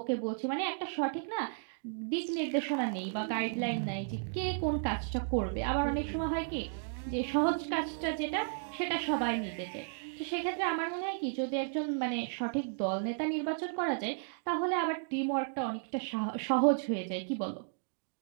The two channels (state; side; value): silent; left; digital silence